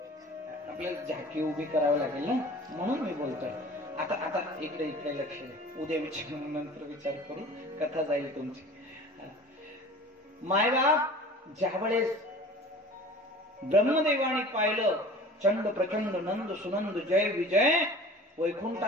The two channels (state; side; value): normal; both; correlation 0.42